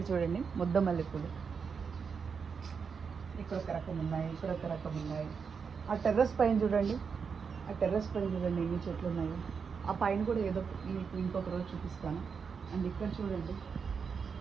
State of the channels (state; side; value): quieter; left; 5.9 dB